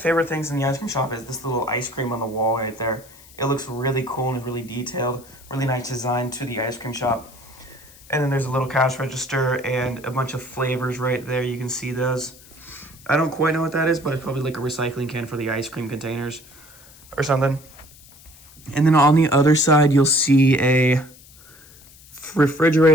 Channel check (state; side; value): noise; left; hiss, 23 dB below the sound